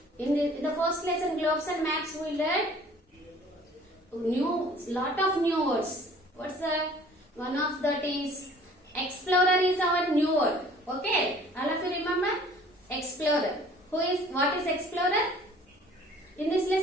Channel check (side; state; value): both; normal; correlation 0.52